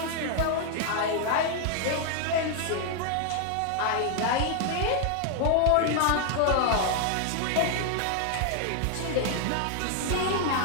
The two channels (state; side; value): different; both; correlation 0.00